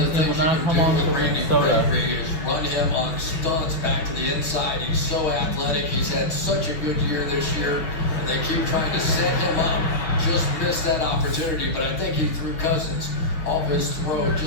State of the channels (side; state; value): right; late; 6.0 ms